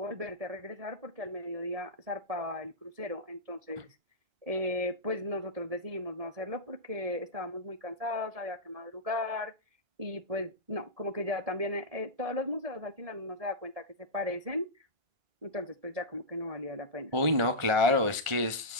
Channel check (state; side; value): late; left; 1.5 ms